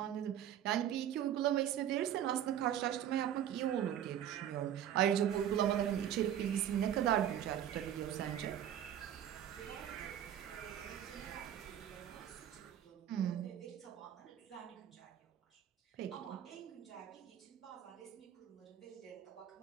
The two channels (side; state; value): left; quieter; 10.4 dB